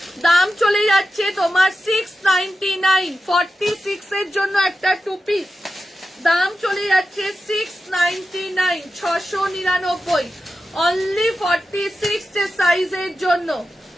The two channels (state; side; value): normal; both; correlation 0.92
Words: দাম চলে যাচ্ছে তোমার 699, 46 এর জন্য একটা 2 পিস দাম চলে যাচ্ছে 699 699, অনলি 46 সাইজের জন্য,